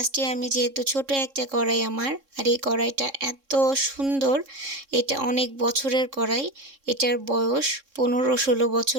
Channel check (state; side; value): late; left; 3.7 ms